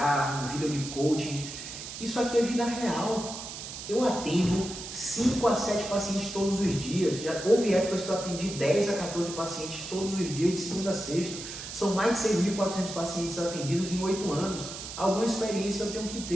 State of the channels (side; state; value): right; noise; hiss, 9 dB below the sound